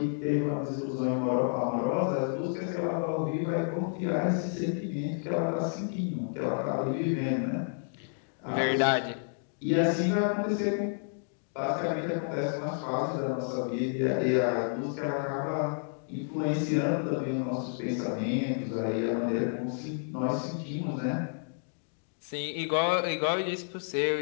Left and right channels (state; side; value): silent; right; digital silence